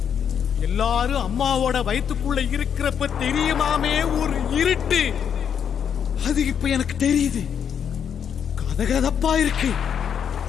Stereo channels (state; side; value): quieter; right; 8.0 dB